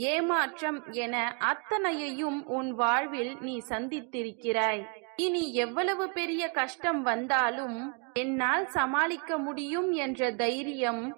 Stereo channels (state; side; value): quieter; left; 37.5 dB